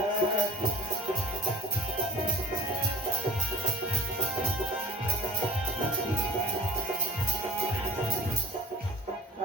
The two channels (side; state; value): both; normal; correlation 0.45